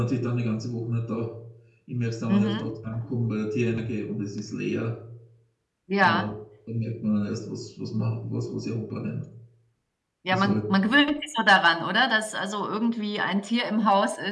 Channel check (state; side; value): identical; both; correlation 1.00